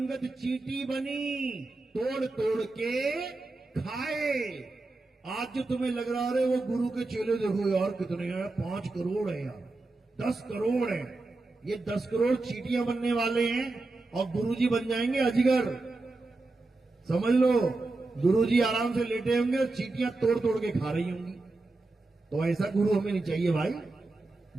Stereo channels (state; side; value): quieter; left; 3.2 dB